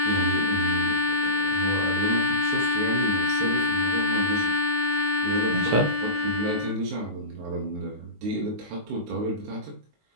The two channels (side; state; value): left; late; 19 ms